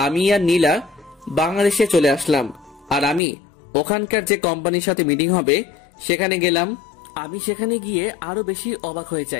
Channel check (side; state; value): right; drops out; at 3.2 s